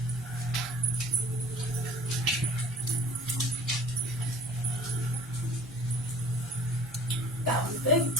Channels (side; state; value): both; normal; correlation 0.45